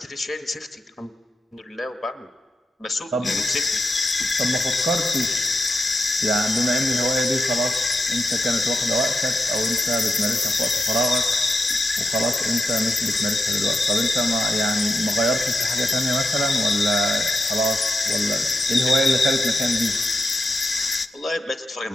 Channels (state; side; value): normal; both; correlation 0.88